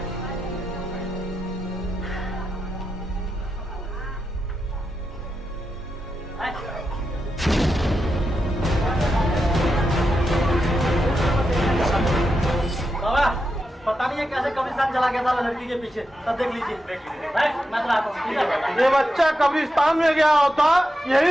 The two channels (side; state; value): both; normal; correlation 0.87